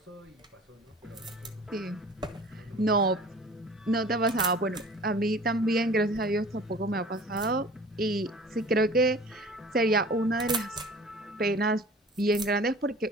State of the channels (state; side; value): normal; both; correlation 0.44